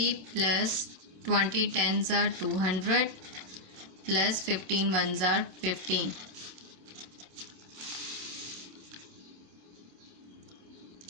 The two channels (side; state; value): left; late; 27 ms